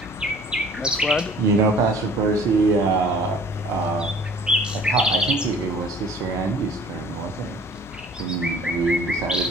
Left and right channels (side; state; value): both; normal; correlation 0.51